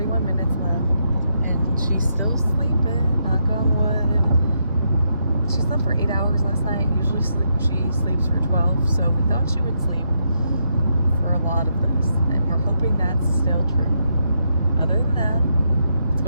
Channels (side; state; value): both; inverted; correlation -0.79